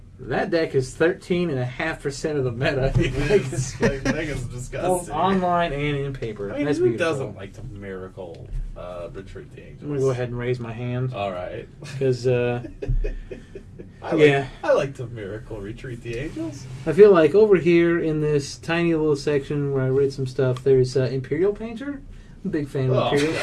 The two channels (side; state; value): both; identical; correlation 1.00